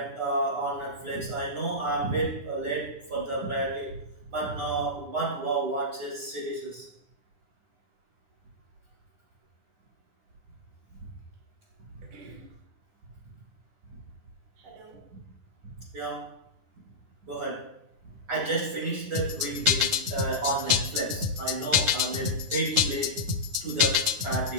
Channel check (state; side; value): late; left; 10 ms